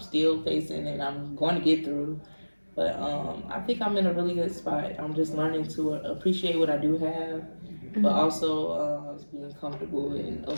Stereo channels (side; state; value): both; inverted; correlation -1.00